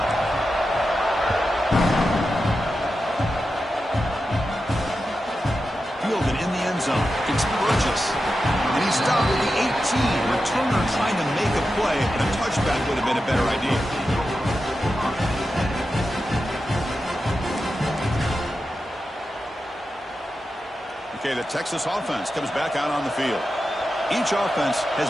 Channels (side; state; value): both; normal; correlation 0.91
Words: Fielded in the end zone. It's Burgess. And he's stopped at the 18. Returner trying to make a play, and a touchback would have been a better idea. Okay, the Texas offense comes back out on the field. Each offense has